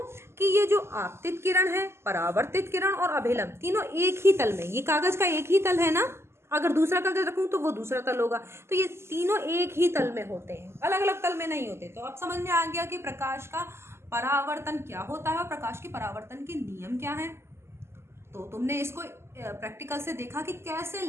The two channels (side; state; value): left; late; 0.12 ms